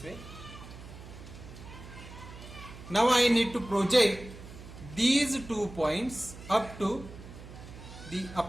way. Now I need to project these 2 points up to the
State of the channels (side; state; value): right; noise; hum, 15 dB below the sound